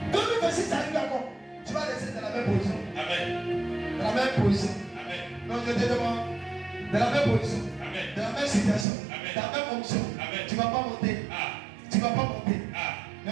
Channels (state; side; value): drops out; left; at 8.8 s